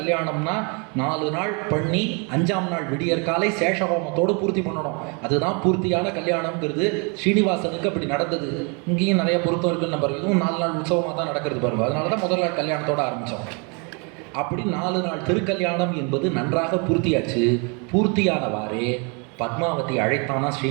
4 நாள் பண்ணி 5ஆம் நாள் விடியற் காலை சேஷஹோமத்தோடு பூர்த்தி பண்ணணும். அதுதான் பூர்த்தியான கல்யாணம்ங்கிறது. ஸ்ரீனிவாசனுக்கு அப்படி நடந்தது. இங்கேயும் நிறைய பொருத்தம் இருக்குன்னு நம்பர். இதுவும் 4 நாள் உற்சவமாக தான் நடக்கிறது பாருங்க. அதனால தான் முதல் நாள் கல்யாணத்தோடு ஆரம்பித்தோம். அப்படி 4 நாள் திருக்கல்யாணம் என்பது நன்றாக பூர்த்தியாச்சு. பூர்த்தியானவாறே பத்மாவதி அழைத்தானா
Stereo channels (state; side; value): quieter; left; 34.0 dB